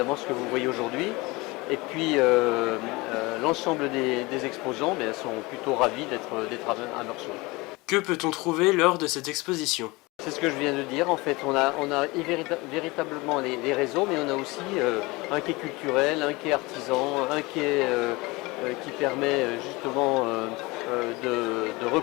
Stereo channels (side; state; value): right; quieter; 23.5 dB